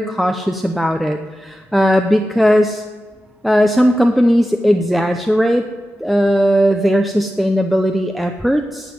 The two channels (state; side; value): normal; both; correlation 0.93